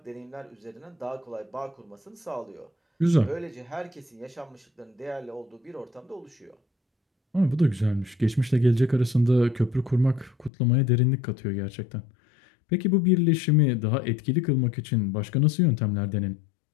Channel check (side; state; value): right; drops out; at 10.5 s